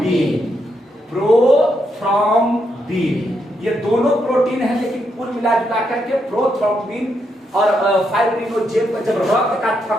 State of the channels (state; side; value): normal; both; correlation 0.80